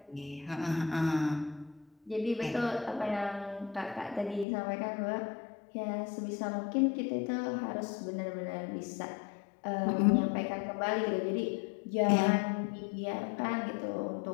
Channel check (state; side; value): drops out; right; at 4.5 s